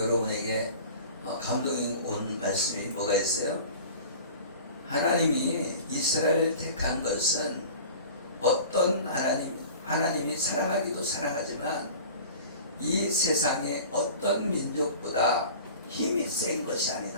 감동이 온 말씀이 뭐가 있어요? 하나님이 이스라엘을 택한 것은 어떤 하나님이 사랑하기도 사랑하지만 이 세상의 어떤 민족보다 힘이 센 것이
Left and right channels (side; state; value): both; inverted; correlation -0.41